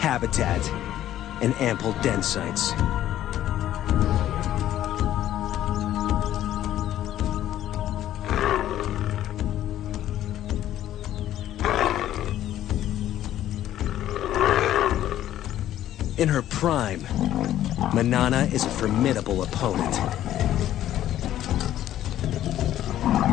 and ample den sites. In her prime, Manana is a formidable opponent.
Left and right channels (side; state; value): right; quieter; 12.5 dB